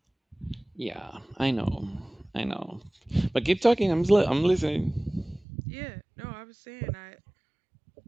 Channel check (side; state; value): left; drops out; at 5.5 s